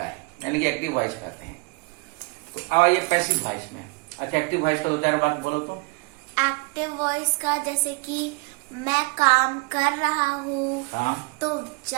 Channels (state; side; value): quieter; left; 29.2 dB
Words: है, यानी कि एक्टिव वॉइस कहते हैं। तो अब आइए पैसिव वॉइस में। अच्छा, एक्टिव वॉइस का दो चार बात बोलो तो। एक्टिव वॉइस का जैसे कि मैं काम कर रहा हूँ, हाँ, तो